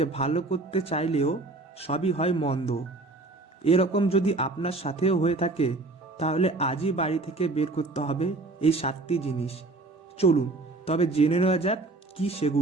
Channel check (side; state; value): left; quieter; 3.2 dB